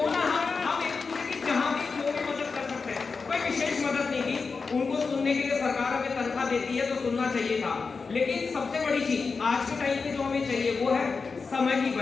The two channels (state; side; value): quieter; right; 4.7 dB